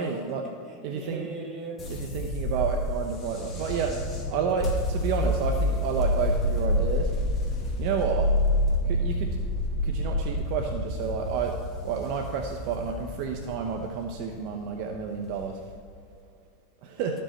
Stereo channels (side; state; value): both; normal; correlation -0.10